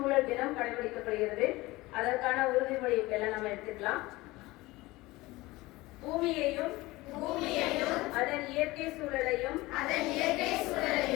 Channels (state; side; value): quieter; right; 20.2 dB